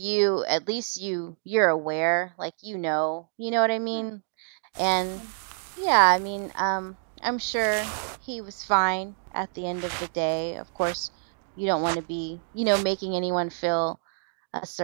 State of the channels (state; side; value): silent; left; digital silence